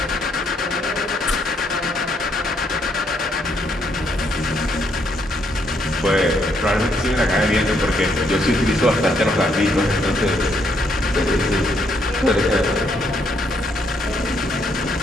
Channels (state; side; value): normal; both; correlation 0.73